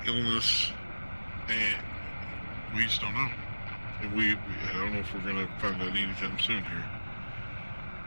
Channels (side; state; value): both; inverted; correlation -1.00